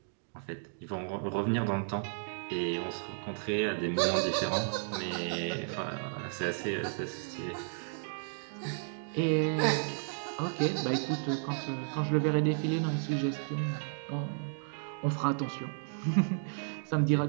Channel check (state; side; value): silent; left; digital silence